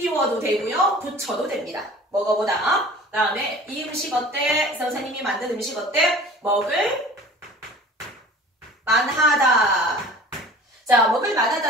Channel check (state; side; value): normal; both; correlation 0.44